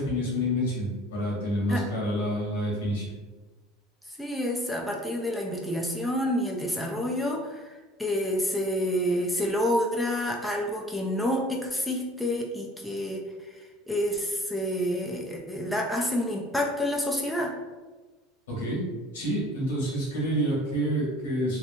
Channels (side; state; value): both; normal; correlation 0.52